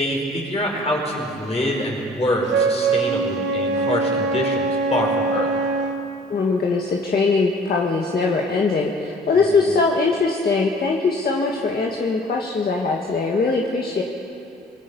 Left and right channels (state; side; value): normal; both; correlation 0.50